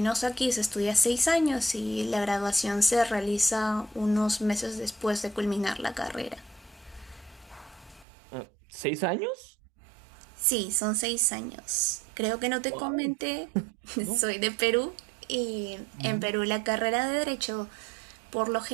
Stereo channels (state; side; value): drops out; left; at 8.1 s